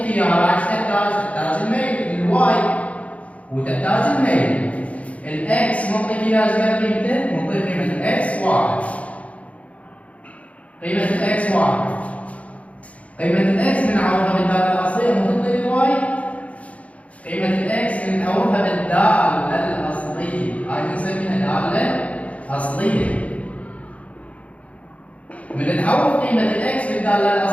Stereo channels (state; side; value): late; right; 0.066 ms